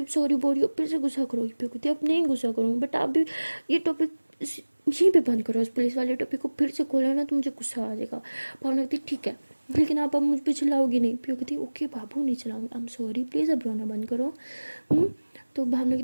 सॉरी बोल रही हो फिर से गुस्सा करोगी। पीयू कहती है अब नहीं गुस्सा करूँगी, बट आप भी ये टॉपिक यहीं पे बंद करो, उस पुलिस वाले टॉपिक को फिर से खोला ना तो मुझे गुस्सा आ जाएगा। भावना कहती ठीक है लेकिन आप अब मुझ पर चिल्लाओगी नहीं। पीयू कहती ओके बाबू नहीं चलाऊंगी, आई एम सॉरी प्लीज़ अब रोना बंद करो। तो भावना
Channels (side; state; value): both; inverted; correlation -1.00